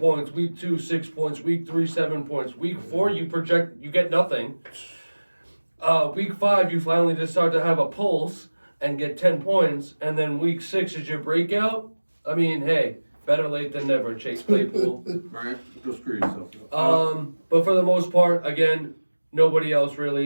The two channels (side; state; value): both; inverted; correlation -1.00